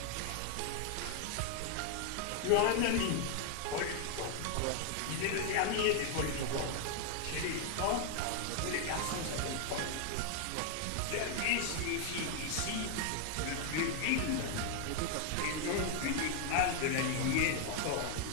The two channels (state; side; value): different; both; correlation 0.00